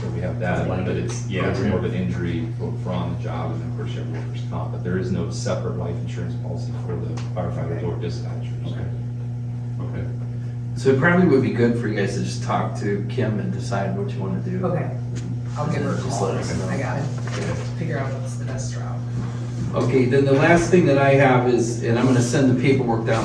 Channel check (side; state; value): both; identical; correlation 1.00